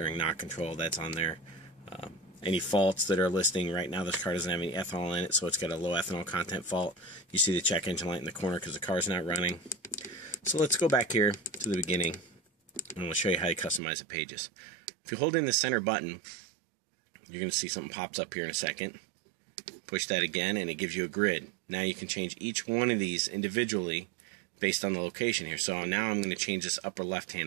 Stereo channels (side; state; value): left; drops out; at 13.8 s